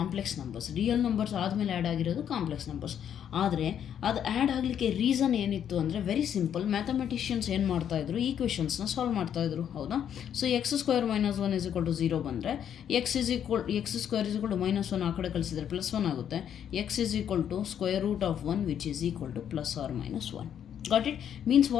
numbers. Real numbers ಆದಮೇಲೆ ಆ್ಯಡ್ ಆಗಿರೋದು ಕಾಂಪ್ಲೆಕ್ಸ್ ನಂಬರ್ಸ್. ಆದರೆ ಅದು ಆ್ಯಡ್ ಆಗಲಿಕ್ಕೆ ರೀಸನ್ ಏನಿತ್ತು ಅಂದರೆ ವೆರಿ ಸಿಂಪಲ್, ಮ್ಯಾಥಮೆಟಿಷಿಯನ್ಸ್ ಏನು ಮಾಡ್ತಾಯಿದ್ರು, ಈಕ್ವೇಷನ್ಸ್ನ ಸಾಲ್ವ್ ಮಾಡ್ತಾಯಿದ್ರು, ಹೌದಾ? ಸೊ x² - 1 = 0 ಬಂದರೆ x² = -1 ಆ ಕಡೆ ಕಳಿಸಿದರೆ +1 ಆಗುತ್ತೆ. x = √1 which is equal to +or -1. Got it? Means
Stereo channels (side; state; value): right; quieter; 9.2 dB